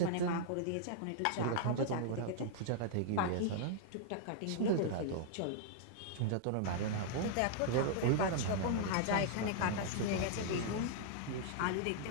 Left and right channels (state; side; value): different; both; correlation -0.01